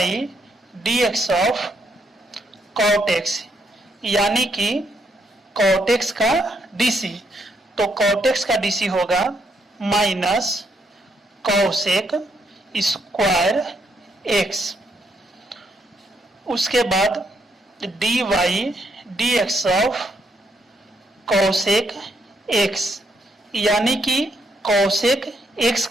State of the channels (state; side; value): normal; both; correlation 0.75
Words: d x of cot x, यानी कि कॉट एक्स का डीसी। तो कॉट एक्स का डीसी होगा माइनस कॉसेक स्क्वायर एक्स। उसके बाद d y d x of cosec x, यानी कि कॉसेक एक्स